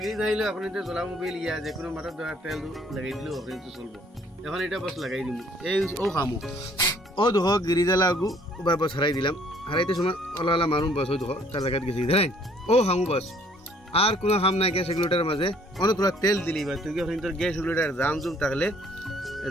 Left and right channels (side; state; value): both; normal; correlation 0.60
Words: গ্রিজ হইলে আপনি তো জ্বলা মোবিল ইয়া যে কোনো মাথার দেওয়ার তেল লাগাই দিলেও আপনি তো চলবো। এখন এটা বস লাগাই দিম এই ও খামু ও দেখো গ্রিজ লাগু বা বস হারাই দিলাম। হারাইতে সময় ওলা ওলা মারুম বস ওই দেখো তার লাগাত গেছি ধরেন ও খামু বস। আর কোনো খাম নাই গ্যাস রেগুলেটরের মাঝে অনেক তোরা তেল দিলি বা তুই আপনি তোর গ্যাস রেগুলেটর জাম জুম থাকলে